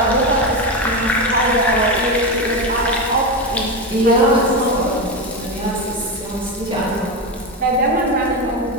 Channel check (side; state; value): both; normal; correlation 0.15